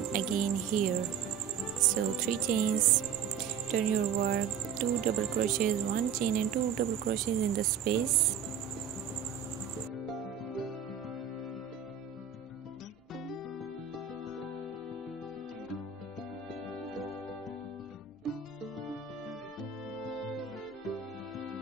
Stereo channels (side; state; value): left; quieter; 7.7 dB